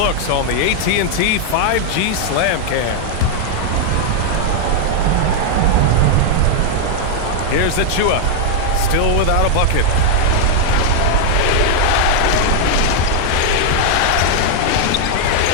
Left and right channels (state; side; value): different; both; correlation 0.00